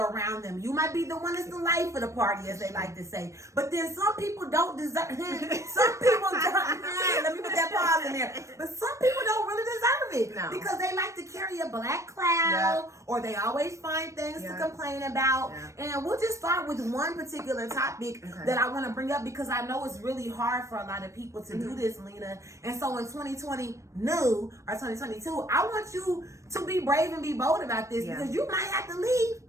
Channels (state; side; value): late; left; 0.15 ms